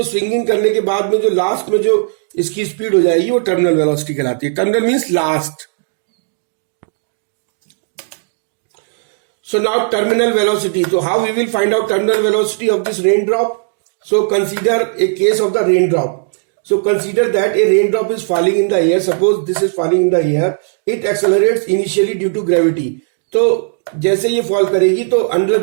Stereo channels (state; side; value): silent; left; digital silence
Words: स्विंगिंग करने के बाद में जो लास्ट में जो इसकी स्पीड हो जाएगी वो टर्मिनल वेलोसिटी कहलाती है. Terminal means last. So now terminal velocity. So how we will find out terminal velocity of this raindrop? So consider a case of the raindrop. So consider that a raindrop is falling in the air. Suppose this is falling in the air. It accelerates initially due to gravity. तो जैसे ये fall करेगी तो under